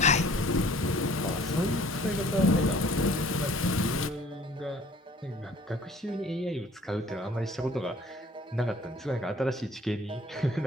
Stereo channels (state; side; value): normal; both; correlation 0.53